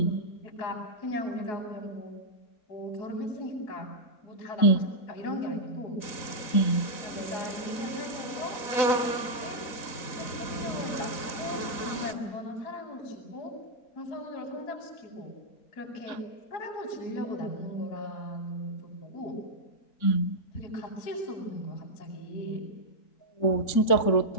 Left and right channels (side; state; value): right; late; 4.0 ms